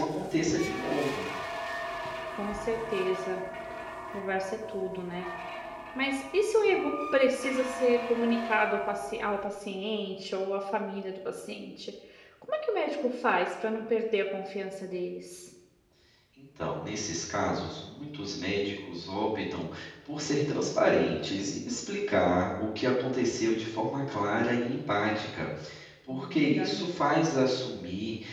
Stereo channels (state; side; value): identical; both; correlation 1.00